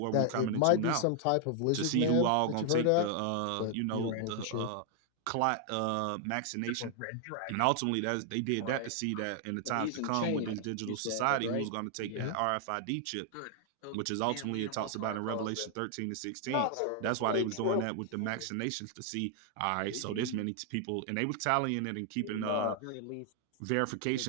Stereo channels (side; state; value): both; different; correlation 0.00